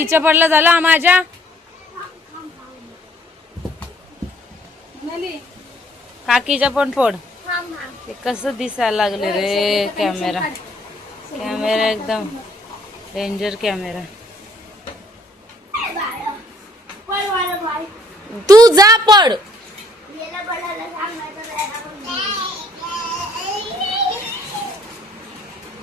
पडलं झालं माझ्या. काकीच्या पण फोड. ते कसं दिसायला लागले रे कॅमेरा एकदम डेंजर कॅमेरा. तू जा पड.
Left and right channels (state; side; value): normal; both; correlation 0.63